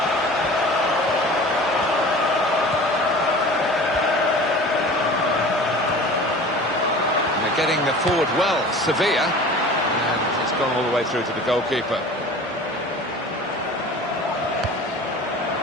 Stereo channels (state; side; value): normal; both; correlation 0.40